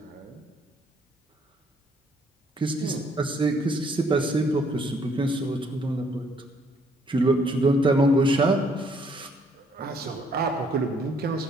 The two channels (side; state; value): both; normal; correlation 0.66